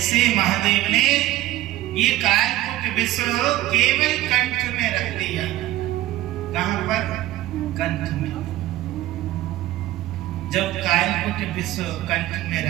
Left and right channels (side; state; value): left; quieter; 15.7 dB